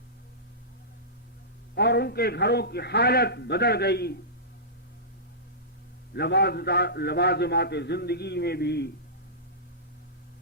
اور ان کے گھروں کی حالت بدل گئی، لوازمات زندگی میں بھی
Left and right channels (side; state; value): both; normal; correlation -0.19